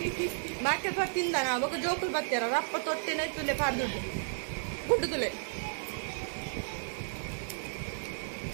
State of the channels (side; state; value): left; silent; 56 dB below the other